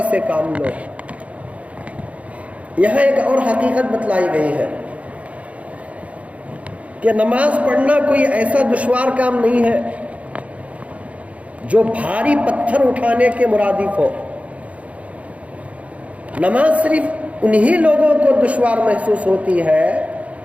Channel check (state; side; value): late; left; 0.066 ms